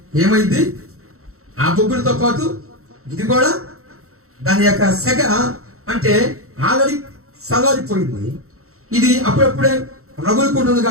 ఏమైంది? ఆ బొగ్గులతో పాటు ఇది కూడా దాని యొక్క సెగ అంటే ఆల్రెడీ సలారిపోయింది. ఇది అప్పుడప్పుడే రగులుకుంటుంది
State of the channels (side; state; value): left; late; 0.63 ms